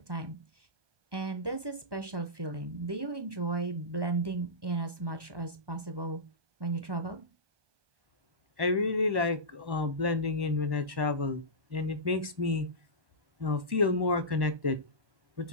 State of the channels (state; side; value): late; left; 1.1 ms